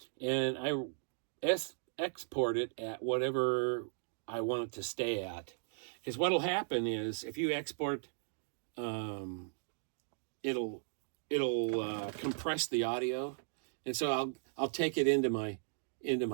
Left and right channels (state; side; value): silent; left; digital silence